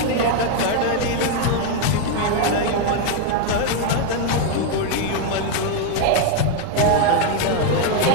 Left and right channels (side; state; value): both; different; correlation 0.01